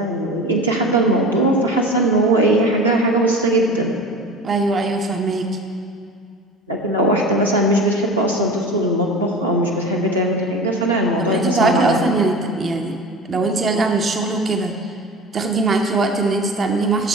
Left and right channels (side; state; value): both; normal; correlation 0.34